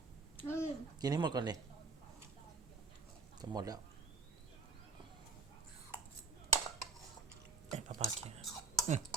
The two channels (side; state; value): left; quieter; 4.1 dB